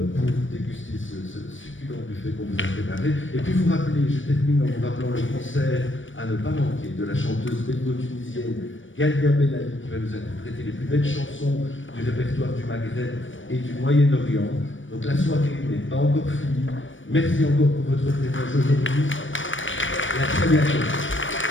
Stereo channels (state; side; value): late; right; 0.56 ms